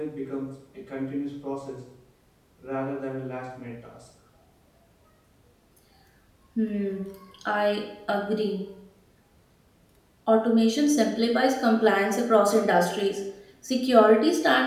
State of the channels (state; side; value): identical; both; correlation 1.00